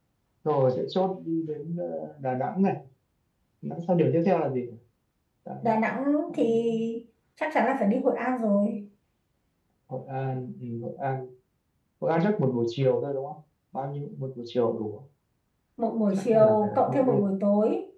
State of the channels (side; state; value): both; identical; correlation 1.00